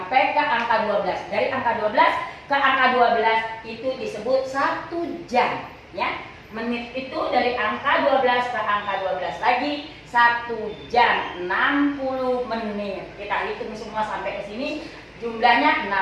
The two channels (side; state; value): both; identical; correlation 1.00